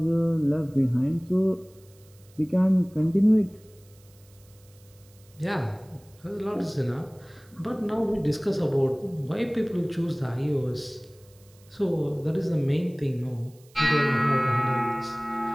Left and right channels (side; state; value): right; noise; hiss, 29 dB below the sound